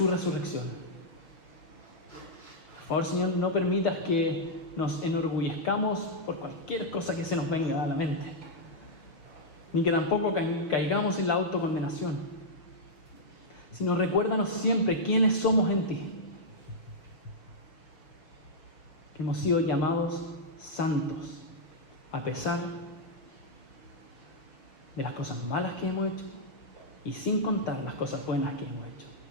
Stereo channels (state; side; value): late; right; 6.1 ms